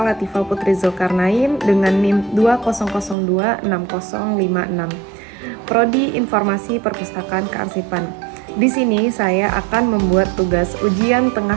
Latifah Putri Zulkarnain dengan NIM 20026056, Prodi Informasi Perpustakaan Kearsipan. Di sini saya akan membuat tugas ujian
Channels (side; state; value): left; drops out; at 3.2 s